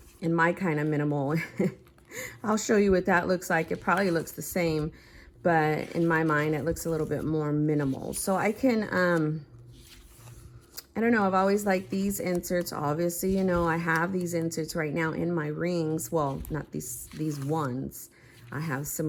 And my kind of minimal, I'll show you what that looks like. It probably looks the same, but in my mind, it looks a little bit more minimal. So I can, I don't know, I've always liked these inserts. Obviously, you know, I have these inserts right now in my rings. Well, not these ones. I have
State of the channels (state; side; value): identical; both; correlation 1.00